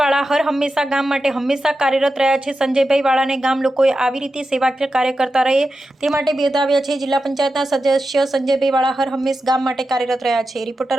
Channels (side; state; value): both; normal; correlation 0.91